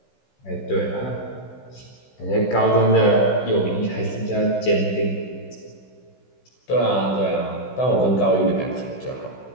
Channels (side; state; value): right; late; 16 ms